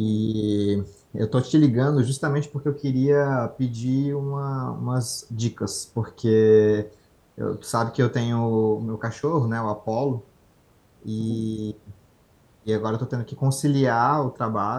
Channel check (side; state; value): both; identical; correlation 1.00